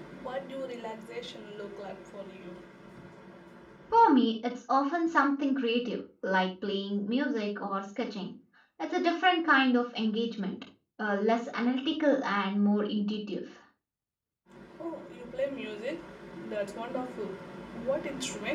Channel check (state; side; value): identical; both; correlation 1.00